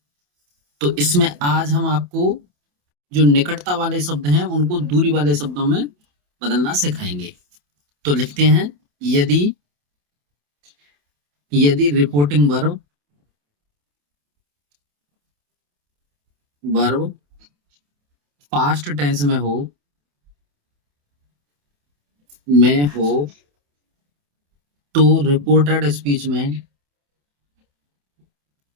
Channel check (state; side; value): late; left; 28 ms